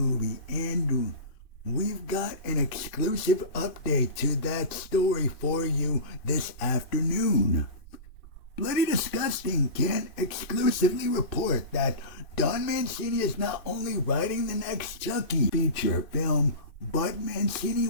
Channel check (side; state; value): right; late; 2.6 ms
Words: and we've got an exclusive update to that story for you this afternoon. Bloody Disgusting can exclusively report that Don Mancini is not only writing the next Chucky feature film, but Mancini